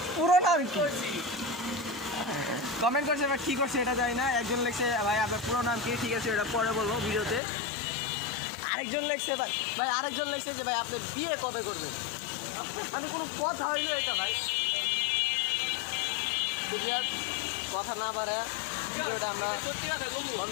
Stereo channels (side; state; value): right; drops out; at 7.4 s